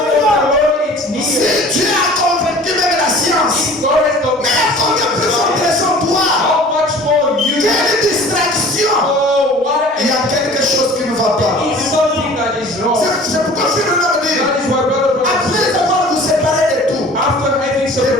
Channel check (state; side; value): normal; both; correlation 0.46